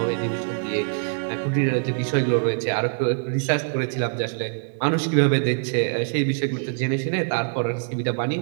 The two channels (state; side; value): silent; left; digital silence